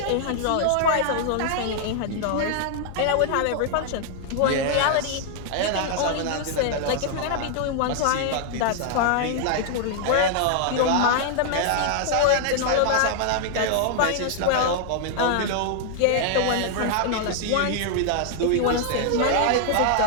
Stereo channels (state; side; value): different; both; correlation 0.00